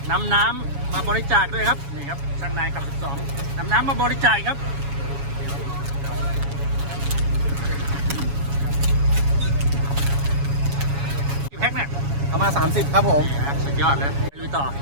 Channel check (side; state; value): left; late; 7.2 ms